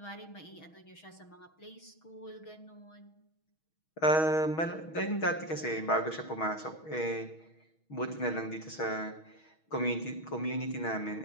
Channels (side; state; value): right; late; 6.3 ms